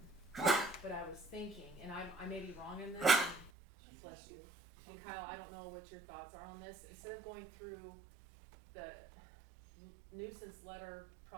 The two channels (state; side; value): drops out; left; at 3.5 s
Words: but I was thinking, and I may be wrong in this, and bless you. And Kyle, I don't know what your thoughts are on this, instead of going through the nuisance letter